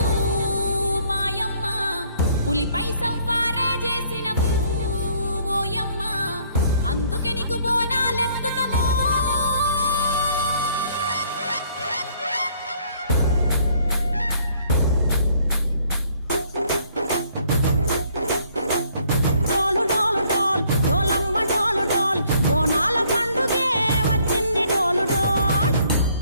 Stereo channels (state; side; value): inverted; both; correlation -0.63